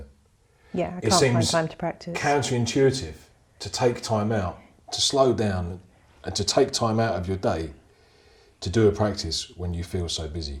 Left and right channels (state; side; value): identical; both; correlation 1.00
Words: Yeah, it seems time to practice. Counterintuitive to take time out, to slow down and to take time out of your day to do a practice when you feel so busy.